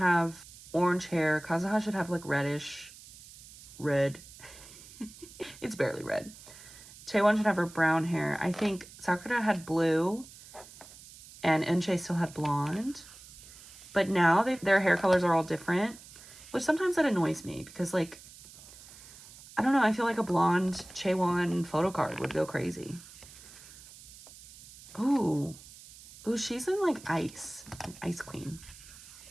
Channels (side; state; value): right; noise; hiss, 19 dB below the sound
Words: orange hair, Kazuha should have like reddish, red. It's barely red. Taewon should have her brown hair. I think Sakura had blue and Eunchae still had blonde. But now their hair colors are all different, which sometimes that annoys me because, like, I don't know, I feel like a blonde Chaewon photo card would go crazy. Ooh. Ooh, she's in, like, Ice Queen.